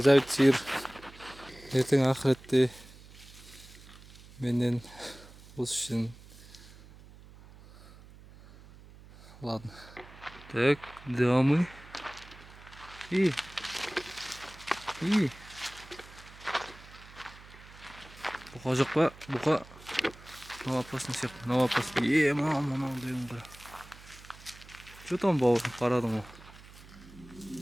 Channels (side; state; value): right; noise; hum, 20 dB below the sound